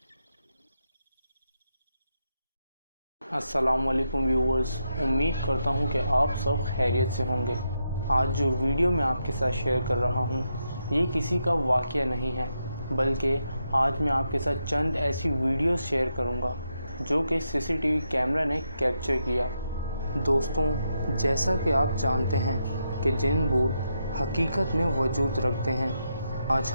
अस्सलाम वालेकुम व्यूअर्स, उम्मीद करता हूं कि आप सब खैरियत से होंगे। आज जो वीडियो मैं आपके साथ शेयर कर रहा हूं, ये किसी का वाक़या नहीं है, बल्कि आज मैं आपके साथ चंद ऐसी वीडियोस शेयर करूंगा जो कि सीसीटीवी कैमरा ने कैप्चर किया। दोस्तों, जैसा कि आप जानते हैं कि जिन भूत हकीकत में वजूद रखते हैं, आज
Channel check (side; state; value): both; inverted; correlation -0.83